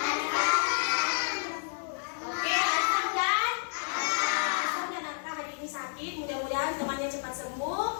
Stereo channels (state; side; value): silent; right; digital silence